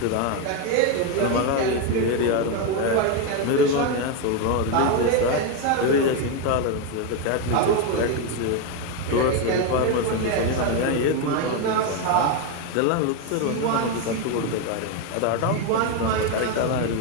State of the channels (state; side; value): different; both; correlation 0.02